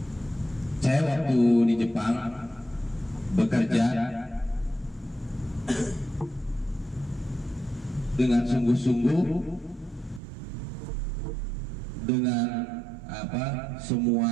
Saya waktu di Jepang bekerja dengan sungguh-sungguh, dengan semua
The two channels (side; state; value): left; drops out; at 10.2 s